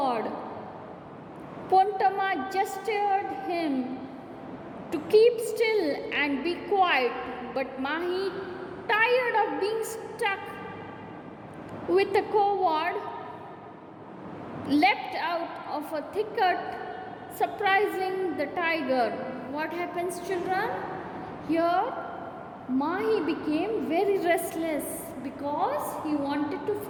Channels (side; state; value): both; identical; correlation 1.00